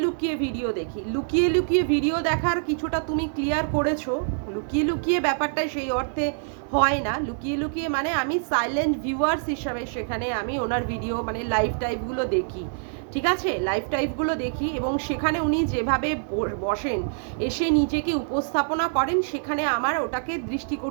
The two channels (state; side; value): silent; left; digital silence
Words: লুকিয়ে ভিডিও দেখি, লুকিয়ে লুকিয়ে ভিডিও দেখার কিছুটা তুমি ক্লিয়ার করেছো। লুকিয়ে লুকিয়ে ব্যাপারটা সেই অর্থে হয় না। লুকিয়ে লুকিয়ে মানে আমি সাইলেন্ট ভিউয়ার্স হিসাবে সেখানে আমি ওনার ভিডিও মানে লাইভ টাইপগুলো দেখি, ঠিক আছে? লাইভ টাইপগুলো দেখি এবং সেখানে উনি যেভাবে বসেন, এসে নিজেকে উপস্থাপনা করেন, সেখানে আমার ওটাকে